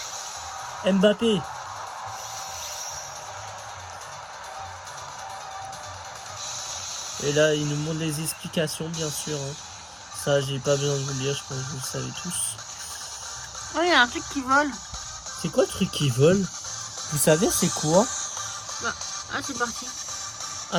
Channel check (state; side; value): identical; both; correlation 1.00